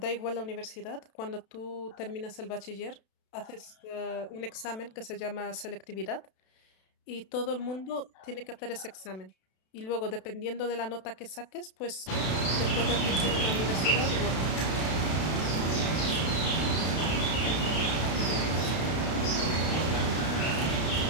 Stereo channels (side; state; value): right; late; 32 ms